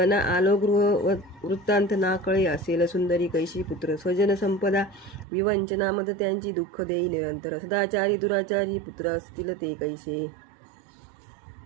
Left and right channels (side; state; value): left; drops out; at 5.2 s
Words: आलो गृह वृत्तांत ना कळे असेल सुंदरी कैशी पुत्र स्वजन संपदा विवंचना मद त्यांची दुःख देई निरंतर सदाचारी दुराचारी पुत्र असतील ते कैसे